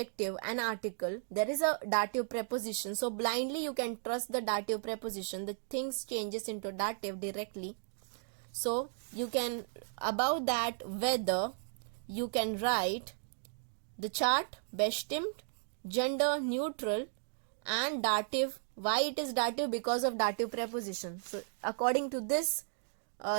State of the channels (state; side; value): silent; left; digital silence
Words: and article there is a dative preposition. So blindly you can trust the dative preposition, the things changes into dative directly. So you can, above that whether, you can write the chart bestimmt, gender neutral, and dative. Why it is dative? Because of dative preposition. So according to this